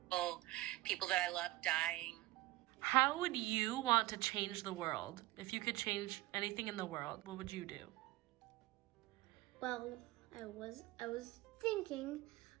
People that I love dying. How would you want to change the world? If you could change anything in the world, what would you do? Well, I was thinking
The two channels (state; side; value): quieter; left; 18.3 dB